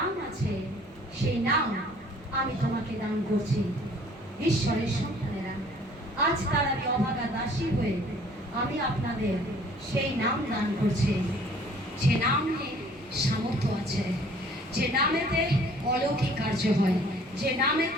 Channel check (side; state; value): both; normal; correlation 0.55